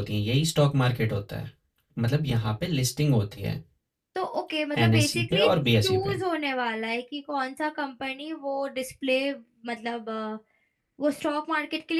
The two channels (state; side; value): identical; both; correlation 1.00